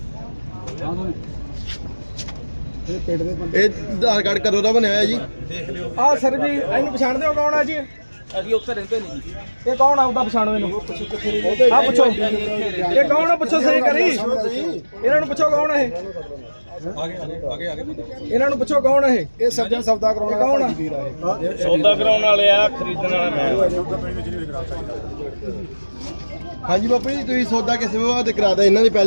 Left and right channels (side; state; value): both; inverted; correlation -1.00